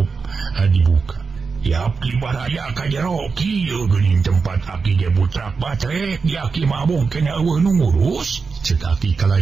dibuka. Yap Kibaraya ka jero kieu geuning tempat Aki ge butrak batrek di Aki mabung kena eueuh nu ngurus. Cek Aki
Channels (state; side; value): quieter; left; 4.9 dB